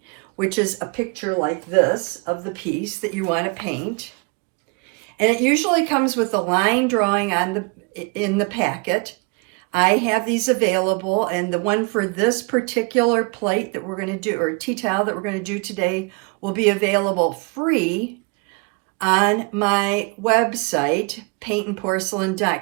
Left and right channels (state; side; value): quieter; left; 32.2 dB